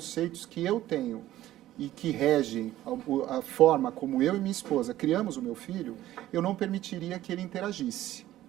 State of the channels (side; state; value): left; quieter; 14.2 dB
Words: que eu tenho e que regem a forma como eu e minha esposa criamos o meu filho, eu não permitiria que ele interagisse.